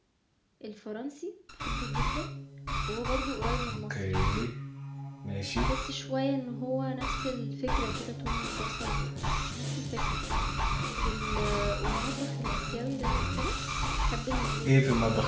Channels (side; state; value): both; identical; correlation 1.00